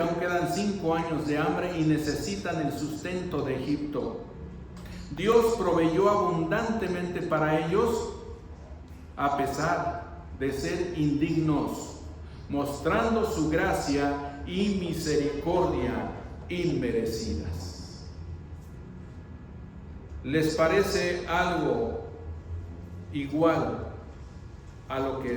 quedan 5 años de hambre y necesitan el sustento de Egipto. Dios proveyó abundantemente para ellos, a pesar de ser indignos, mostrando su gracia y misericordia inmerecidas. ¿Les parece algo igual a lo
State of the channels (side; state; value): both; identical; correlation 1.00